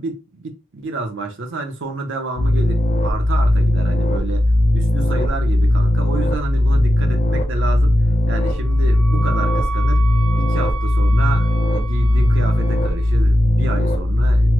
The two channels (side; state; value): both; normal; correlation 0.92